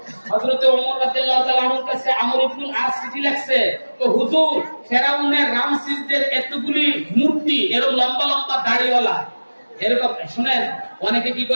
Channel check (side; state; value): both; inverted; correlation -1.00